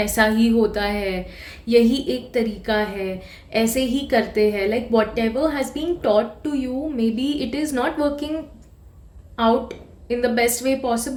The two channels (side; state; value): both; identical; correlation 1.00